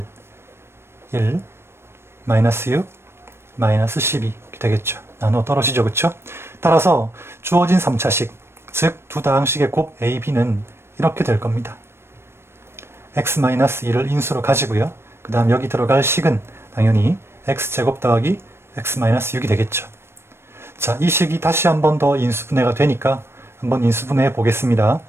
-6, -12 이렇게 되겠죠. 나누어 떨어지죠. 그쵸? 따라서 주어진 3차식, 즉 두 다항식의 곱 A, B는 이렇게 될 겁니다. x-2를 인수로 가지고요. 그 다음 여기 들어갈 식은 당연히 x제곱 더하기 x-6이 되겠죠. 자, 이 식이 다시 한 번 더 인수분해가 되니까 한번 인수분해해 보겠습니다.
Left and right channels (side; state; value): left; late; 0.12 ms